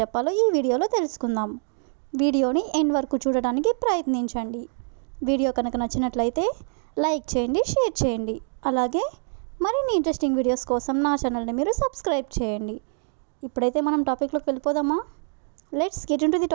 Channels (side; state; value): left; silent; 62 dB below the other